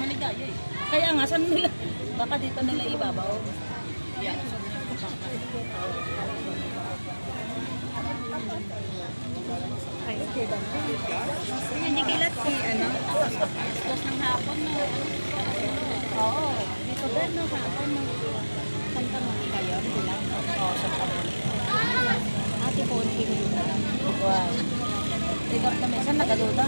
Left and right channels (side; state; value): both; inverted; correlation -1.00